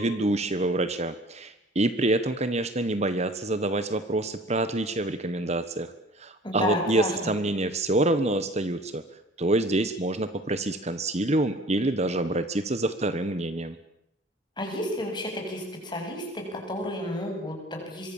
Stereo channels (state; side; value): normal; both; correlation 0.48